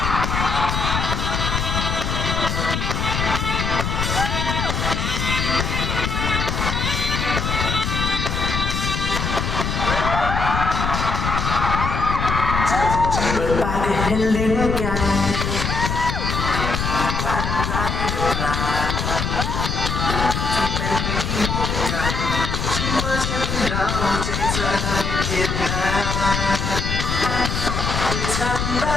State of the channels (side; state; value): left; noise; rumble, 1 dB below the sound